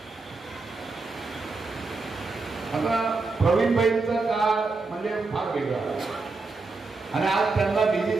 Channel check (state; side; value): quieter; left; 3.9 dB